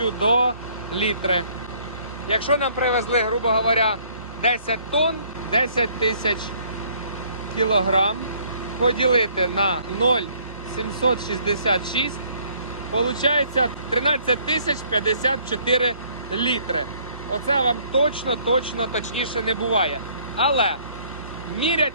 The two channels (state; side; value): inverted; both; correlation -0.62